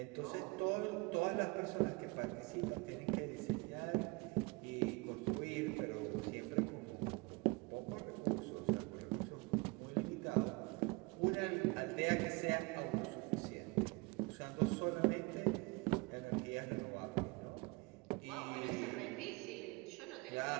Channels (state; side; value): quieter; left; 26.9 dB